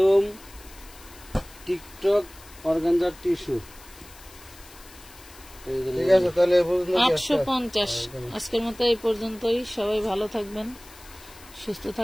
টিকটক অর্গানজার টিস্যু ঠিক আছে তাহলে এই পর্যন্ত 850 আজকের মতো এই পর্যন্তই সবাই ভালো থাকবেন সুস্থ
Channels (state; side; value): noise; left; hiss, 21 dB below the sound